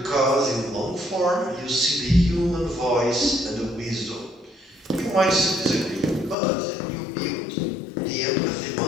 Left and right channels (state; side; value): drops out; right; at 6.4 s